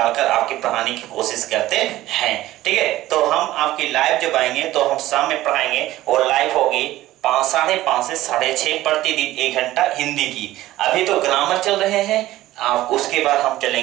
कर आपके पढ़ाने की कोशिश करते हैं। ठीक है, तो हम आपकी लाइव जब आएंगे तो हम शाम में पढ़ाएंगे और लाइव होगी 5:30 से 6:30 प्रतिदिन 1 घंटा हिंदी की। अभी तो ग्रामर चल रहे हैं, आप उसके बाद हम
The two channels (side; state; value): left; quieter; 15.7 dB